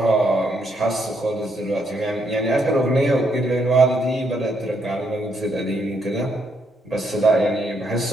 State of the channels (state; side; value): normal; both; correlation 0.75